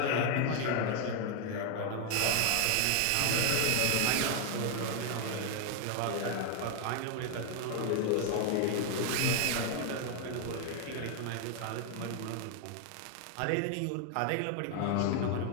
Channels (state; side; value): different; both; correlation 0.00